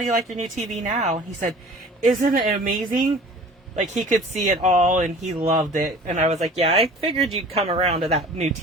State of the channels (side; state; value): both; normal; correlation 0.45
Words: you like your new TV now?" And he said, "Isn't it amazing?" Like, he could see it all and he loved it. And I was like, "Yeah, I figured you'd come around to that new